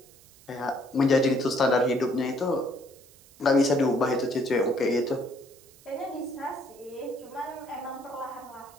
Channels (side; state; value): right; noise; hiss, 25 dB below the sound